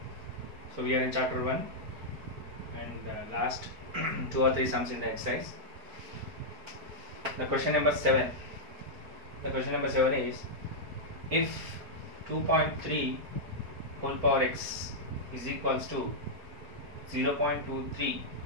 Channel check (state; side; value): late; left; 4.6 ms